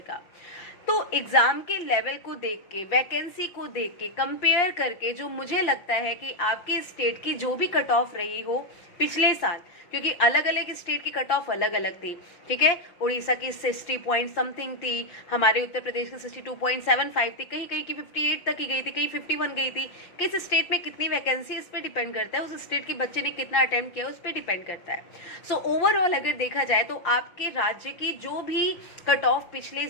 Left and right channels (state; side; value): late; right; 5.7 ms